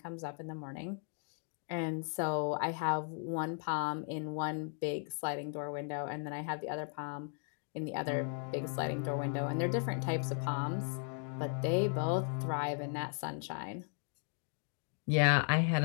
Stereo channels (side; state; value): right; silent; 53 dB below the other